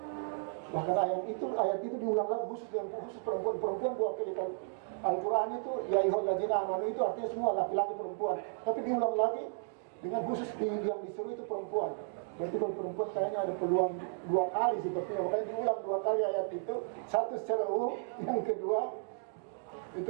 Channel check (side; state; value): left; silent; digital silence